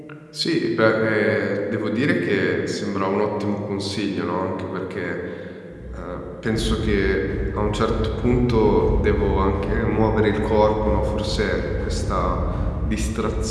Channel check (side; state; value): both; identical; correlation 1.00